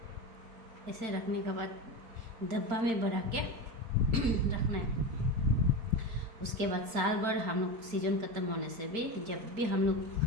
ऐसे रखने के बाद डब्बा में भरा के रखना है। उसके बाद साल भर हम लोग सीजन ख़त्म होने से भी जब भी हम लोग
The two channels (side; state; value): left; late; 4.4 ms